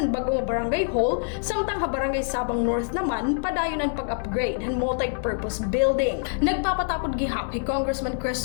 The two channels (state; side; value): silent; right; digital silence